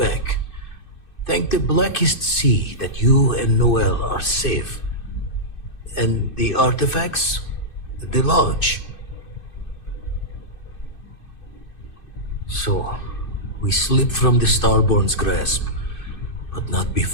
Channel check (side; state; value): right; late; 2.6 ms